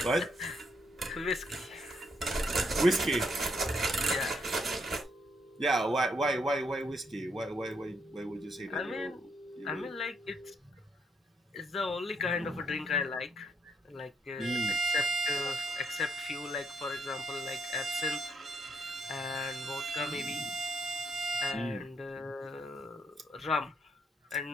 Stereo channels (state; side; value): normal; both; correlation 0.74